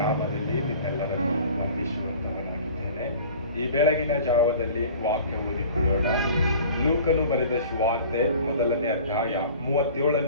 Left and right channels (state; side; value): inverted; both; correlation -0.44